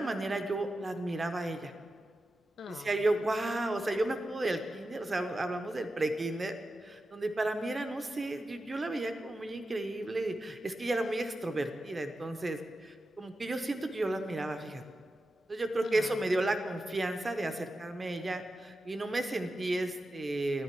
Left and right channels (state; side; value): normal; both; correlation 0.91